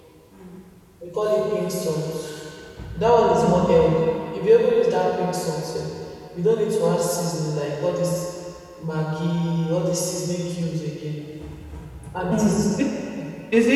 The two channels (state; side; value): identical; both; correlation 1.00